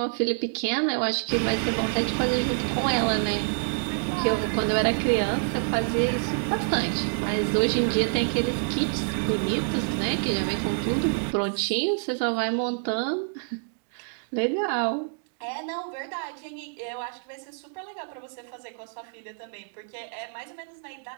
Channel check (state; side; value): silent; left; digital silence